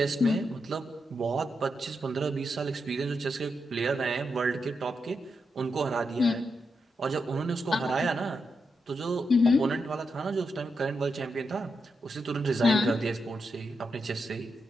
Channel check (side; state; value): both; normal; correlation 0.84